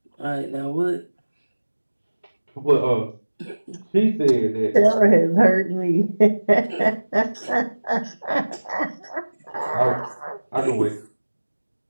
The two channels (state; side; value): inverted; both; correlation -1.00